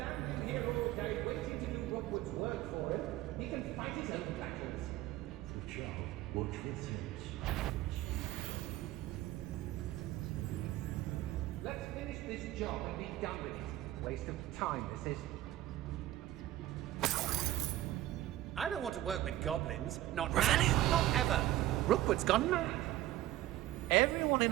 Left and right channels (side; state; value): left; quieter; 14.8 dB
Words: here all day waiting to do Rockwood's work for him. He can fight his own battles. The child, watch this sense. Let's finish this job and be done with it. Waste of time, this is. I don't want to work with goblins. Not now, not ever. Rookwood's gone mad. Everyone